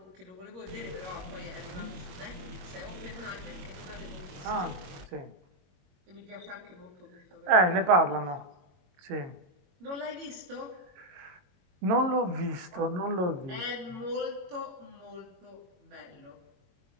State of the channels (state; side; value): late; left; 22 ms